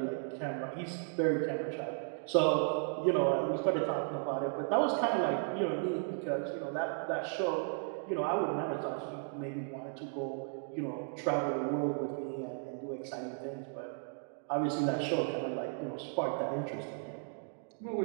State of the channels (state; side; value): silent; left; 54 dB below the other